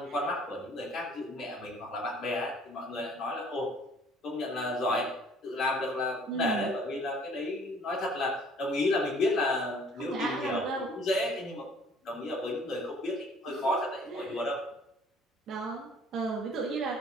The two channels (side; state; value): both; normal; correlation 0.55